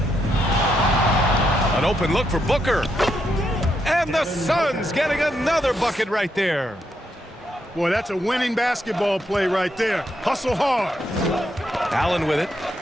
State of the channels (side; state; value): both; normal; correlation 0.80